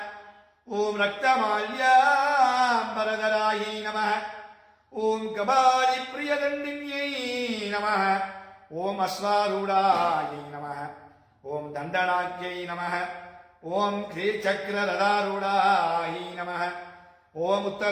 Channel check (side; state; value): both; identical; correlation 1.00